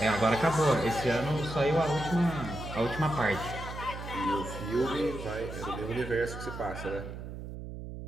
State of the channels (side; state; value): right; noise; hum, 9 dB below the sound